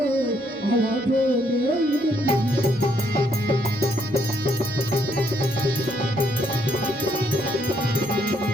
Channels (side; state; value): both; normal; correlation 0.72